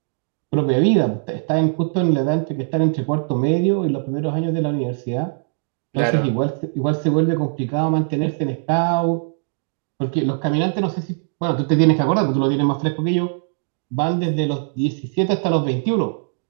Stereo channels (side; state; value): left; silent; digital silence